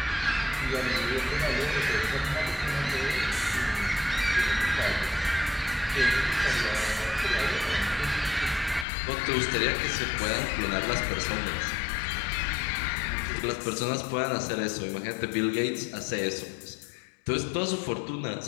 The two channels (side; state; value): right; drops out; at 8.8 s